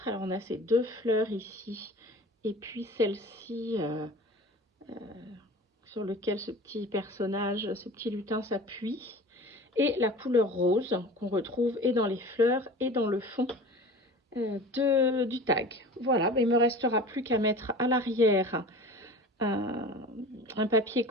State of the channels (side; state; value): both; normal; correlation 0.38